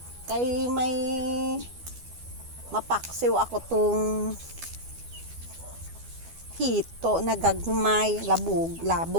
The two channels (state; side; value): late; left; 12 ms